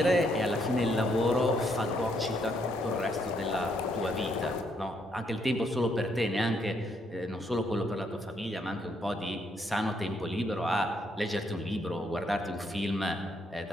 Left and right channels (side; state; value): both; normal; correlation 0.73